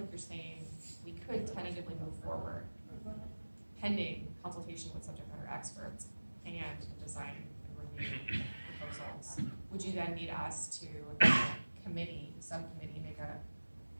you're saying we could tentatively move forward pending consultation with subject matter experts and design and review proposals. Would you then need us to, subcommittee, make a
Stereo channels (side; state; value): both; inverted; correlation -1.00